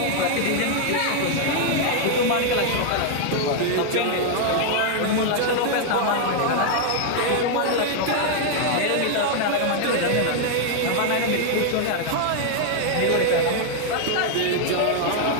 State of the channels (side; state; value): both; different; correlation 0.00